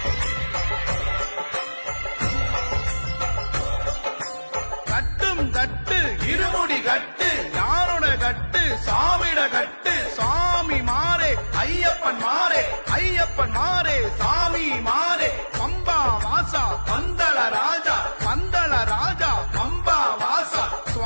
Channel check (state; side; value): inverted; both; correlation -1.00